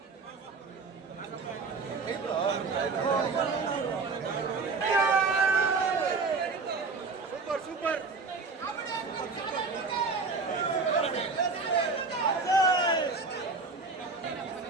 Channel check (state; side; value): quieter; left; 4.3 dB